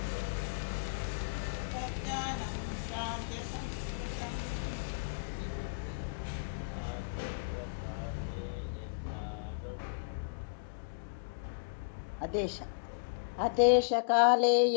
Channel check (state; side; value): quieter; right; 39.3 dB